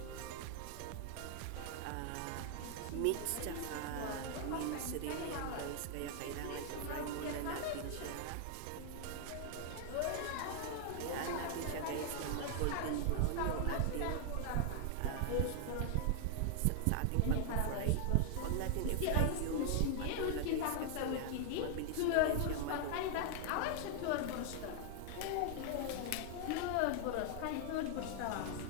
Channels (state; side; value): different; both; correlation 0.00